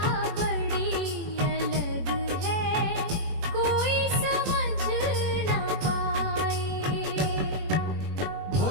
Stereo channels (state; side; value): late; left; 21 ms